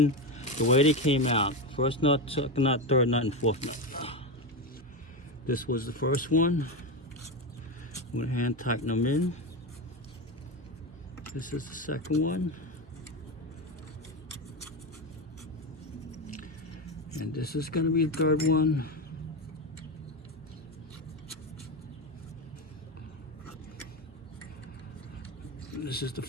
the way they came out. First nut, second nut, third nut, and fourth nut. This was the first one. I'm going to hand tighten them in. This is the second one. And this is going to be the third one. This is the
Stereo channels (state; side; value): normal; both; correlation 0.15